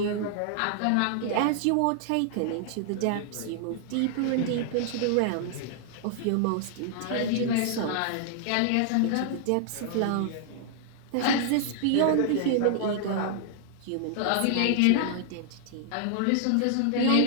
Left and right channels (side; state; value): both; different; correlation -0.01